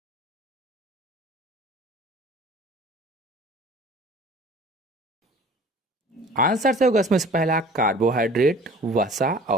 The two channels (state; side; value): normal; both; correlation 0.47